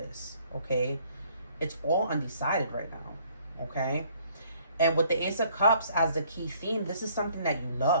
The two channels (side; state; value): both; inverted; correlation -0.62